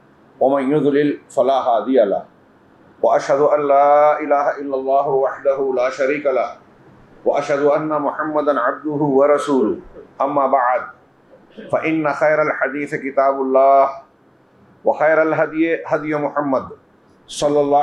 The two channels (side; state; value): both; identical; correlation 1.00